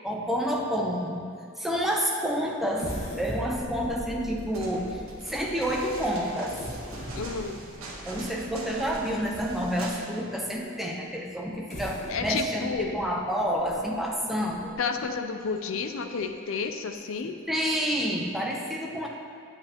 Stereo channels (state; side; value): normal; both; correlation 0.44